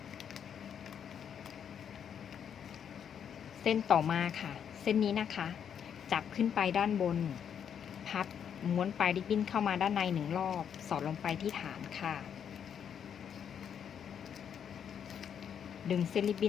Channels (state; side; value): quieter; right; 8.2 dB